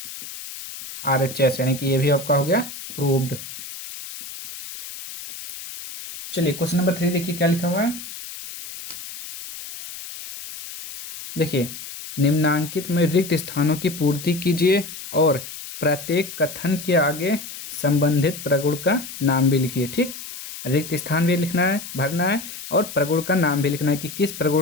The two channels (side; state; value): left; noise; hiss, 11 dB below the sound